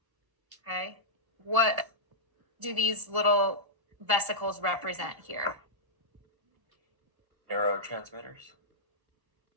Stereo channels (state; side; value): late; left; 1.3 ms